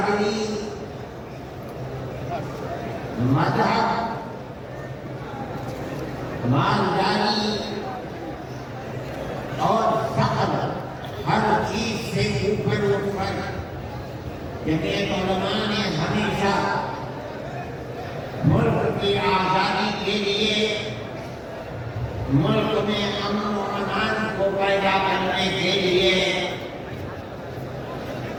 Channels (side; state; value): both; identical; correlation 1.00